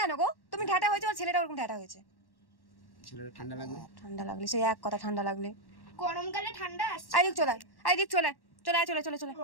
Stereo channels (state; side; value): late; right; 1.1 ms